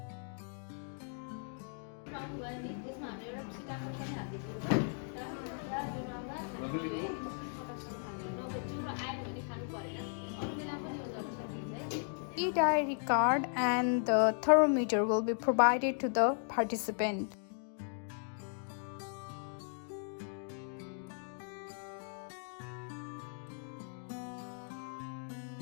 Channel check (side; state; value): right; silent; 53 dB below the other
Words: E-diary card and the thermometer will be provided to the participant.